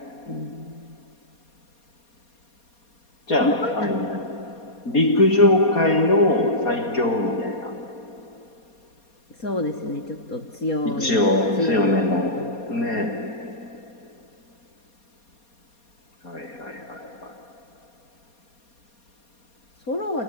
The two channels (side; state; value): right; late; 4.2 ms